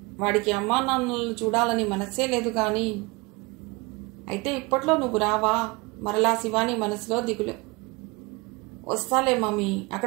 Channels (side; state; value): left; quieter; 25.9 dB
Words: వాడికి అమ్మా నాన్నలను చూడాలని మనస్సే లేదు గాని. అయితే ఇప్పట్లో నువ్వు రావా? మరలా శివాని మనసులో దిగులు. వస్తాలే మమ్మీ,